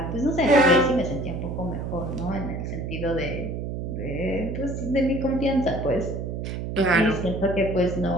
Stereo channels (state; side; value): noise; right; hum, 5 dB below the sound